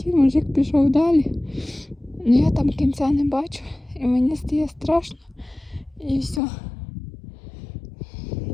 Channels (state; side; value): drops out; right; at 6.4 s